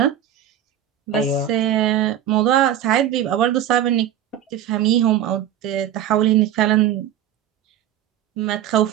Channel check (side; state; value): left; quieter; 10.7 dB